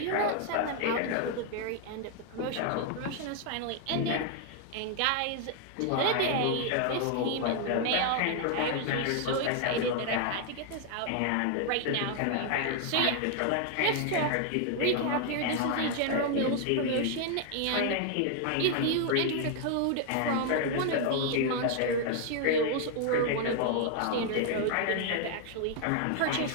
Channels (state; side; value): different; both; correlation 0.00